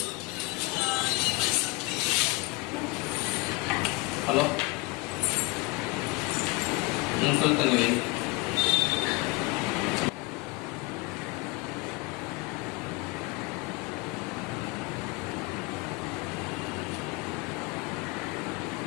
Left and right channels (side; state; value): right; quieter; 25.3 dB